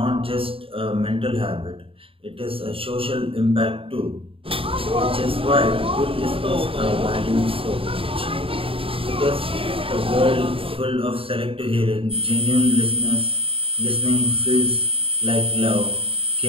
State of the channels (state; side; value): late; left; 0.27 ms